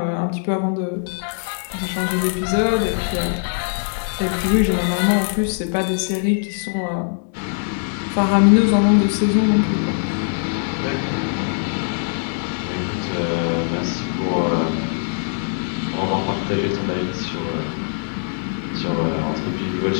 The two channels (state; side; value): silent; right; digital silence